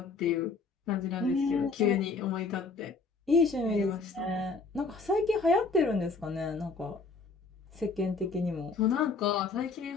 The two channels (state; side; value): quieter; right; 4.2 dB